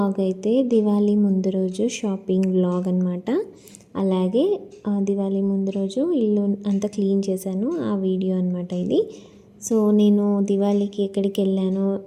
అయితే దివాళీ ముందు రోజు షాపింగ్ వ్లాగ్ అనమాట. అలాగే దివాళీ ముందు రోజు ఇల్లు అంతా క్లీన్ చేశాను, ఆ వీడియో అనమాట ఇది. సో నేను దివాళీకి ఎక్కడికి వెళ్ళానో,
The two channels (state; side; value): identical; both; correlation 1.00